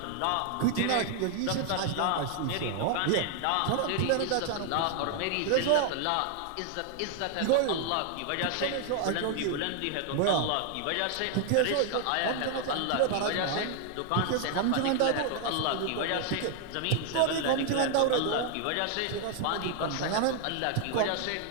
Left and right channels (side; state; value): both; different; correlation 0.00